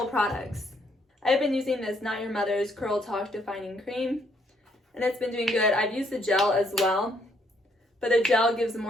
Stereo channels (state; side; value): normal; both; correlation 0.70